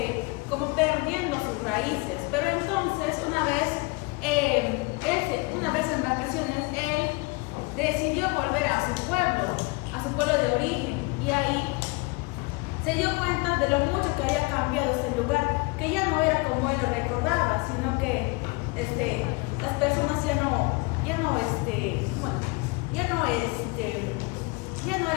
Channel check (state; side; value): quieter; right; 27.1 dB